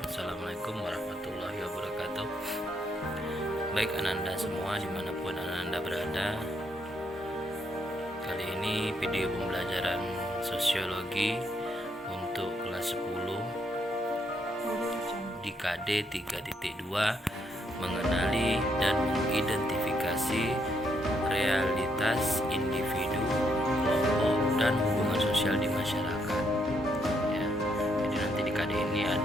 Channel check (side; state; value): both; normal; correlation 0.75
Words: Assalamualaikum warahmatullahi wabarakatuh. Baik Ananda semua dimanapun Ananda berada, kali ini video pembelajaran sosiologi untuk kelas 10 di KD 3.2 mengenali dan mengidentifikasi realitas individu, kelompok, dan hubungan sosial di masyarakat. Ya, jadi nanti di KD ini